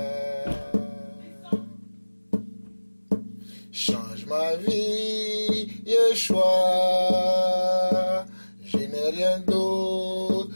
Change ma vie, Yeshua. Je n'ai rien d'autre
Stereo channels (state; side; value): inverted; both; correlation -1.00